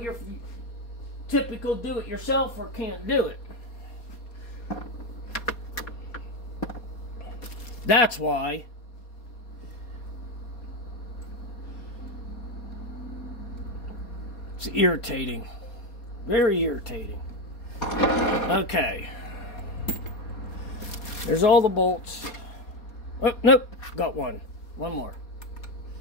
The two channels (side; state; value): right; late; 4.2 ms